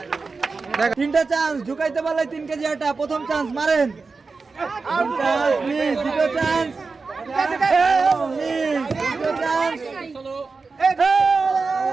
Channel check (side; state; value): left; quieter; 4.3 dB